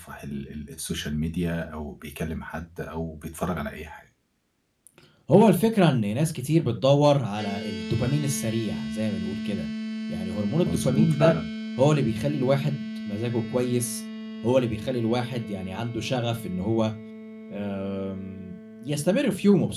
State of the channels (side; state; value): both; identical; correlation 1.00